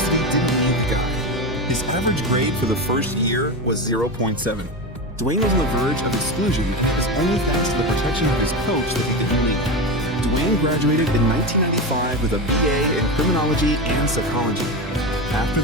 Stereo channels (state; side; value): normal; both; correlation 0.19